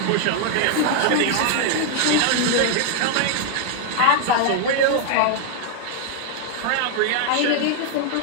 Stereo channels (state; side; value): different; both; correlation 0.00